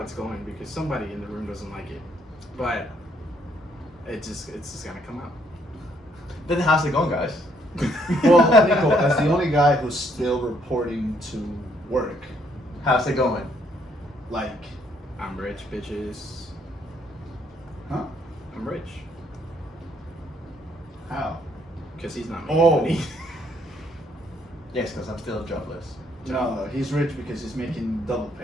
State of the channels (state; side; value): normal; both; correlation 0.69